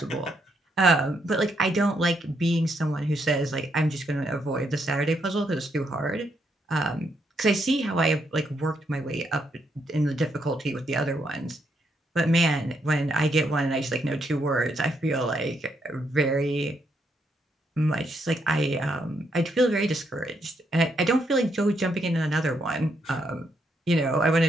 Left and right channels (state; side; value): normal; both; correlation 0.77